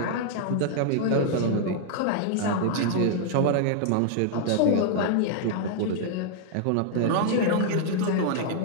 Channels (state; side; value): different; both; correlation -0.01